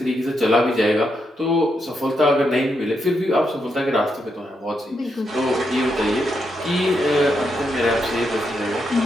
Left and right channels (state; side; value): normal; both; correlation 0.82